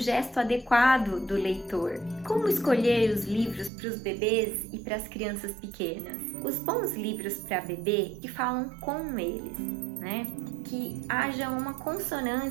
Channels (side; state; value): left; drops out; at 3.7 s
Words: adequado do leitor. Como escolher os livros para os bebês e para as crianças pequenas? Os bons livros para bebê que falam com eles, né? Que haja uma